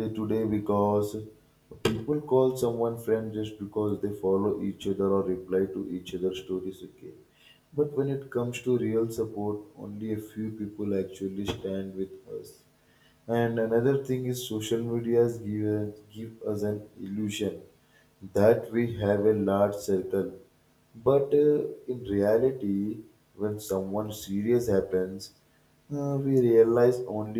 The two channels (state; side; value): identical; both; correlation 1.00